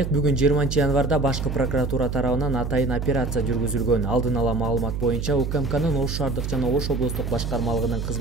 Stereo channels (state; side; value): noise; right; hum, 4 dB below the sound